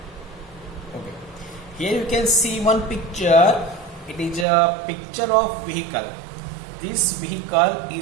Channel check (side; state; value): left; drops out; at 4.5 s